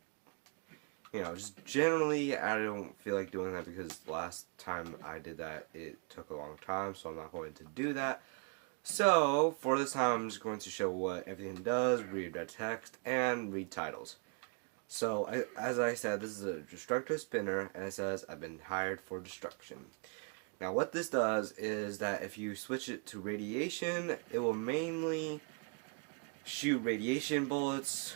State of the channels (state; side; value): quieter; left; 35.5 dB